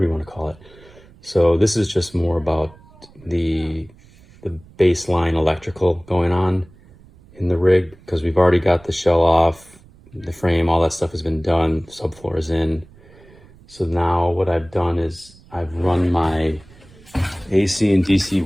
you want to call it. So this is just more about the baseline electrical going on in the rig, because we've already got the shell off, the frame, all that stuff has been done, subfloor is in. So now what I've done is I've run my AC and DC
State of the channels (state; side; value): noise; right; rumble, 25 dB below the sound